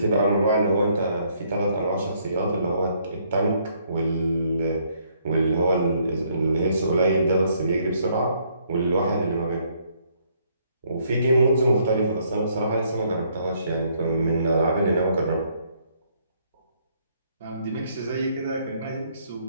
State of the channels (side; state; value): both; inverted; correlation -0.68